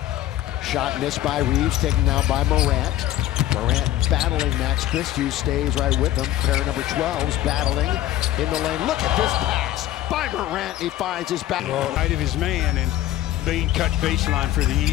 Shot missed by Reeves, taken now by Morant. Morant battling Max Christie, stays right with him. Pair number 12's battling in the lane. Look at this pass by Morant. He finds his back. Right of his man, and Bane cut baseline for the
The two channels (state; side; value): quieter; right; 13.6 dB